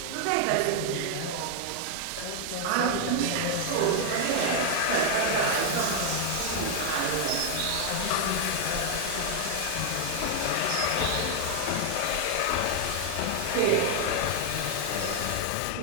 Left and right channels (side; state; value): both; different; correlation 0.00